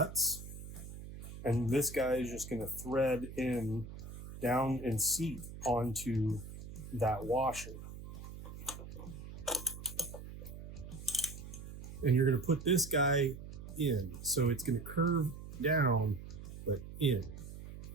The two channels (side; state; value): right; noise; hum, 12 dB below the sound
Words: and this guy is just going to thread in down and seat onto that washer. And you're going to put this guy in. So it's going to curve down, but in.